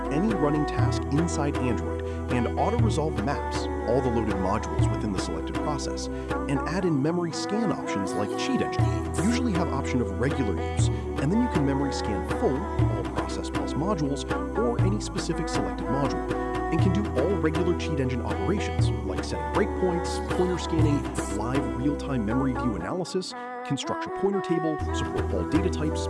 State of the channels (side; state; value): both; identical; correlation 1.00